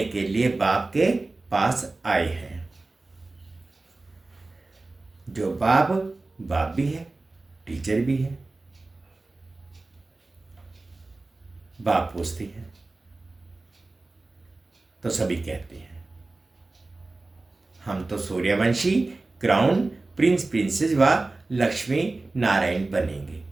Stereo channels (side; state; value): left; quieter; 3.3 dB